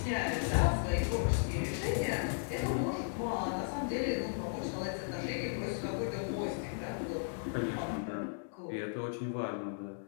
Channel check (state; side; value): silent; right; digital silence